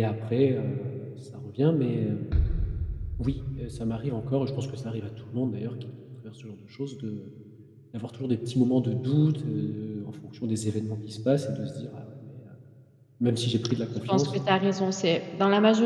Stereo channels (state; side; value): identical; both; correlation 1.00